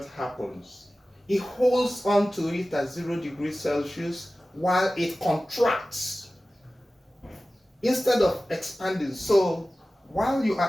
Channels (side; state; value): both; normal; correlation 0.96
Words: happens. It holds on to it at 0 degrees Celsius while it contracts instead of expanding. So while you